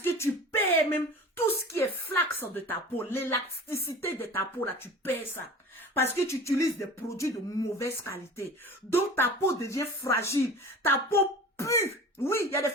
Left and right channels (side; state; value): both; normal; correlation 0.39